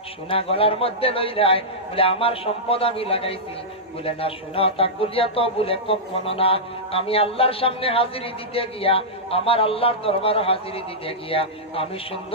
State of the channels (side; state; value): both; normal; correlation -0.11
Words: সোনা গলার মধ্যে লইলাই, বলে আমার সম্পদ আমি লাগাইছি, বলে না সোনা তাক বলিয়া তো বলে কখনো না, আমি আল্লাহর সামনে হাজিরি দিতে গিয়া, আমার আল্লাহর দরবার হাজিরি দিতে গিয়া আমি